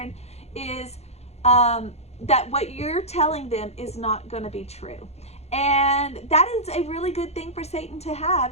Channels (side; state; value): right; late; 0.31 ms